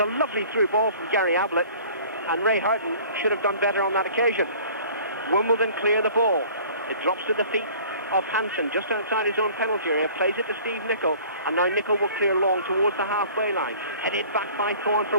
a lovely through ball from Gary Ablett, and Ray Houghton should have done better on that occasion. Wimbledon clear the ball. It drops to the feet of Hansen, just outside his own penalty area, plays it to Steve Nicol, and now Nicol will clear long towards the halfway line. Headed back by Thorne for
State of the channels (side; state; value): both; inverted; correlation -0.48